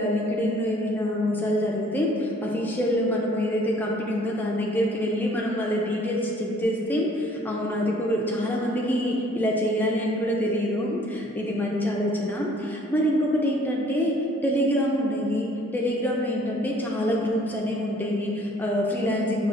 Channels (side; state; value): both; normal; correlation 0.57